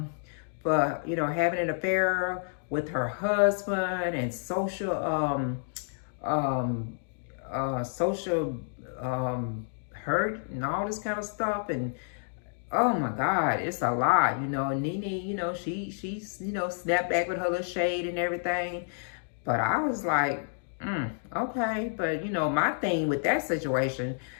for, having an affair with her husband and social hurt and all this kind of stuff. And oh my God, it's a lot. Nene, she's snapped back with her little shade and everything. But I was like, okay. But my thing with that situation,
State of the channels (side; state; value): right; silent; digital silence